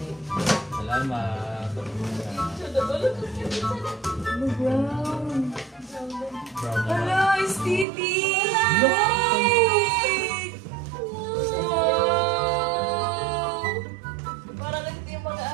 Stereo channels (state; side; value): drops out; left; at 7.9 s